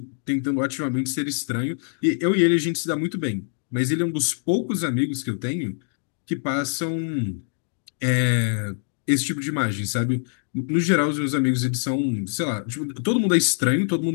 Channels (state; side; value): silent; right; 62 dB below the other